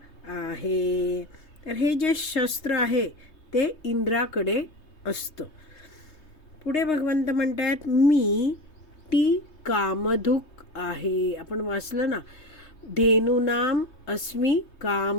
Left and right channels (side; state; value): right; late; 3.3 ms